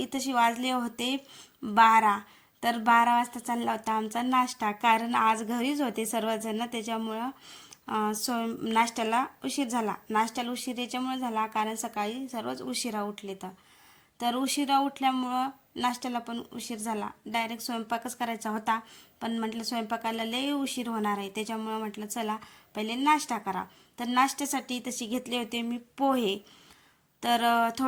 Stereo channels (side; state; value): both; identical; correlation 1.00